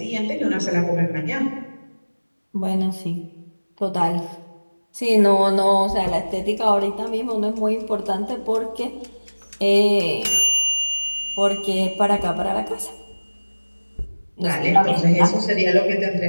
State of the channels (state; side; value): inverted; both; correlation -1.00